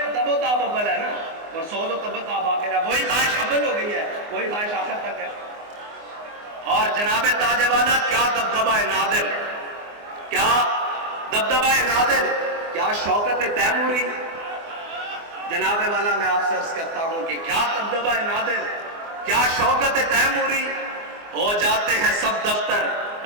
و تاب اول ہے نا، اور سوز و تب و تاب آخر ہے. وہی خواہش اول ہو گئی ہے، وہی خواہش آخر تک ہے. اور جناب تاج والا کیا دبدبہ نادر، کیا دبدبہ نادر، کیا شوکت تیموری. جناب والا میں آپ سے عرض کرتا ہوں کہ کیا دبدبہ نادر، کیا شوکت تیموری. ہو جاتے ہیں سب دفتر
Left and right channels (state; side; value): late; left; 24 ms